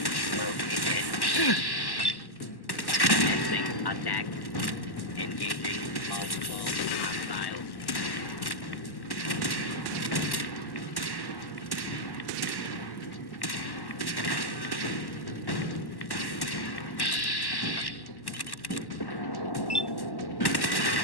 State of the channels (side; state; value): right; late; 1.1 ms